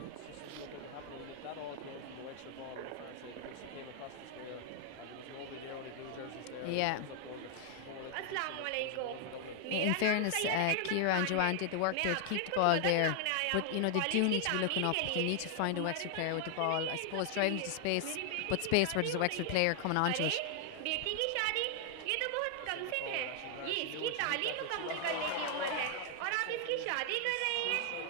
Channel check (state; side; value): different; both; correlation 0.00